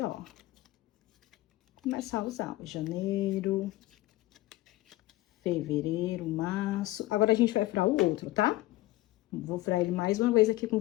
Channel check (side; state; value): right; quieter; 17.8 dB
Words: ó, começar a usar janeiro, fevereiro, março. Agora, a gente vai furar o outro, tá? Vou furar ele mais uma vez aqui com